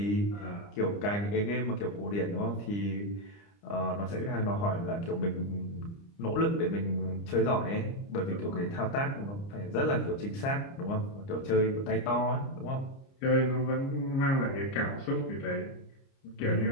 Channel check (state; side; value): late; right; 30 ms